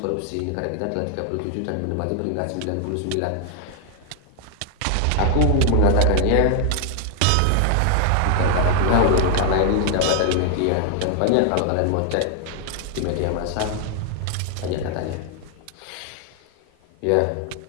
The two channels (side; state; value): both; different; correlation 0.00